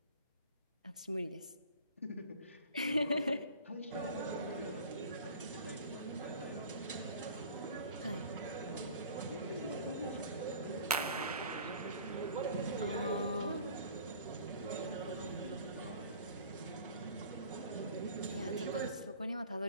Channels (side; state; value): both; inverted; correlation -0.45